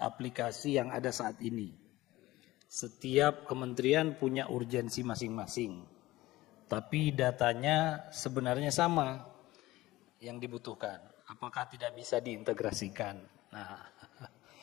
yang ada saat ini? Setiap kementerian punya urgensi masing-masing, tapi datanya sebenarnya sama yang dibutuhkan. Apakah tidak bisa diintegrasikan? Nah,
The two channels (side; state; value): right; quieter; 17.9 dB